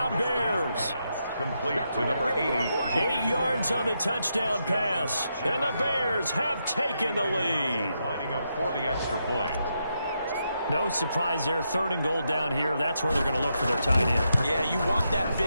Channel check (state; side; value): inverted; both; correlation -0.82